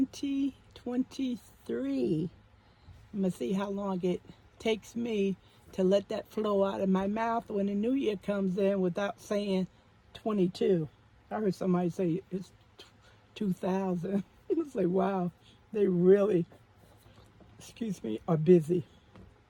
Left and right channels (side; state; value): both; identical; correlation 1.00